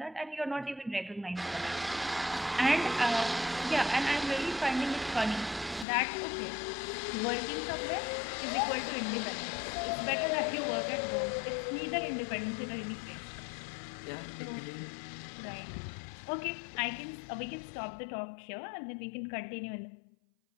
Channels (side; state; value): right; drops out; at 5.9 s